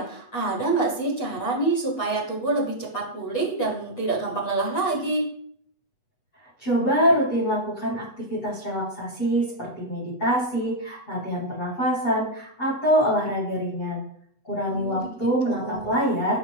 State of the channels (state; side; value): late; right; 8.1 ms